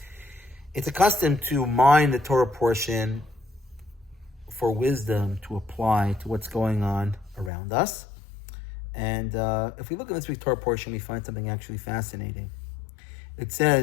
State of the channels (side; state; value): right; drops out; at 7.5 s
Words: It's a custom to mine the Torah portion for wisdom to apply to what's going on around us. And if we look at this week's Torah portion, we find something actually fascinating. It